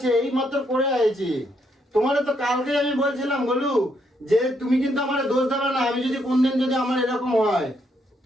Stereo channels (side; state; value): both; normal; correlation 0.75